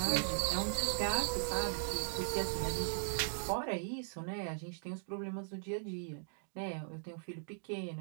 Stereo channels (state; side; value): silent; left; digital silence